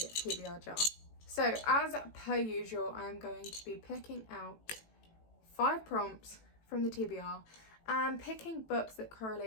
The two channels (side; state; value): right; late; 18 ms